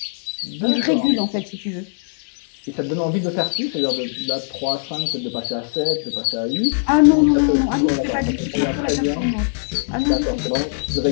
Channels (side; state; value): right; silent; digital silence